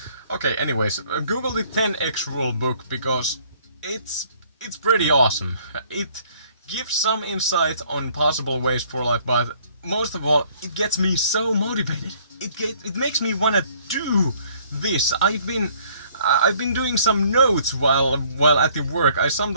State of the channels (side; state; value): both; inverted; correlation -0.61